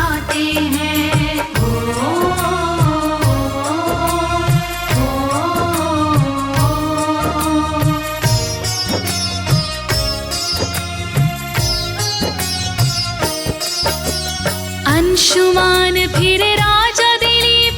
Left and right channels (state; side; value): identical; both; correlation 1.00